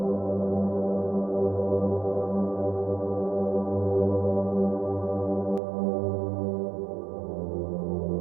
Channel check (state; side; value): drops out; left; at 5.6 s